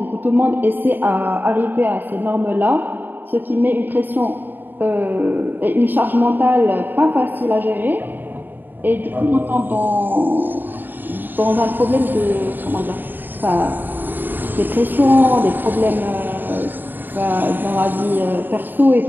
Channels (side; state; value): left; late; 0.091 ms